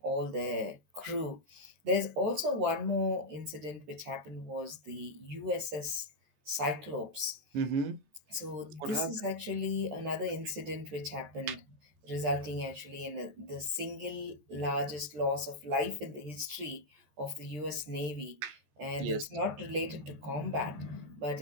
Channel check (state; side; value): late; left; 13 ms